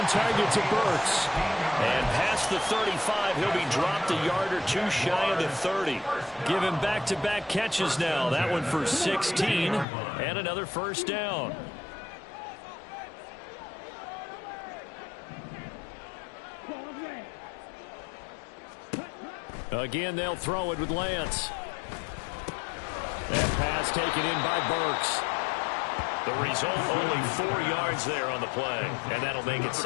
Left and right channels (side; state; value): right; drops out; at 9.9 s